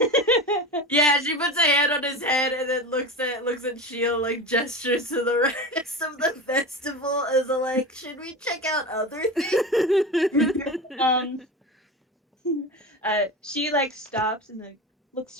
Yeah, she puts a hand on his head and then looks at Shield, like gestures to the rest of the festival as a like, should we check out other things? She like stops and like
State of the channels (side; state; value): both; normal; correlation 0.26